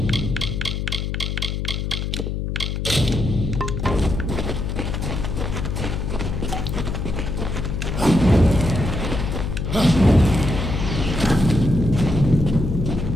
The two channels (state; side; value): noise; left; hum, 2 dB below the sound